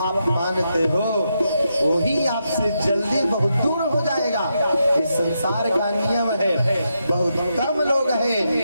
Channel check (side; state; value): both; inverted; correlation -0.83